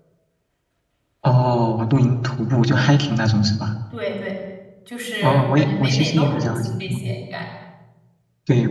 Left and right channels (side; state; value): both; identical; correlation 1.00